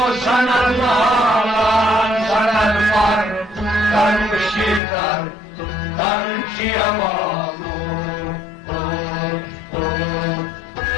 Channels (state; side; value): drops out; right; at 4.8 s